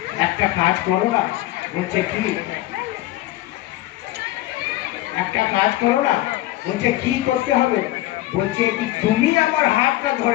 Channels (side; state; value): right; quieter; 16.4 dB